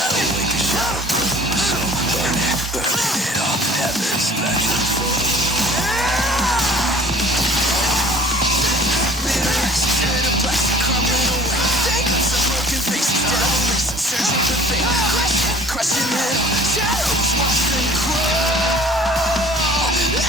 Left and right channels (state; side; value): normal; both; correlation 0.48